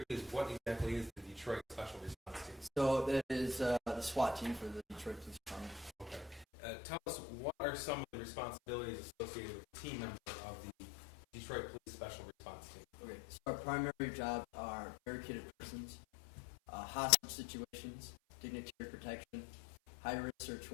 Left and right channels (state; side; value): drops out; right; at 6.5 s